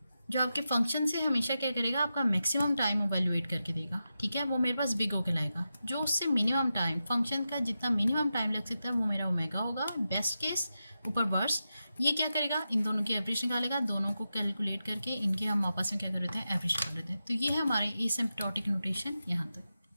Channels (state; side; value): inverted; both; correlation -0.90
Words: जो आपके फंक्शन से हमेशा क्या करेगा, आपका मैक्सिमम टाइम इवैल्यूएट करके देगा, ठीक है, वो मेरे पास बिग O कहलाएगा। जो उससे मिनिमम टाइम, फंक्शन का जितना मिनिमम टाइम लग सकता है वो मेरा ओमेगा होगा, बेस्ट केस ऊपर वर्स्ट। ये क्या करेगा, इन दोनों की एवरेज निकालेगा, दोनों को कैलकुलेट करके इनके हम आपस में क्या कर लेते हैं, एवरेज कर लेते हैं। तो ये है हमारे एसिम्प्टोटिक नोटेशन यहाँ तक।